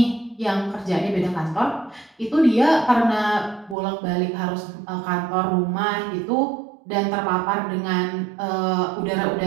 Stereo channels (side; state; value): left; drops out; at 3.8 s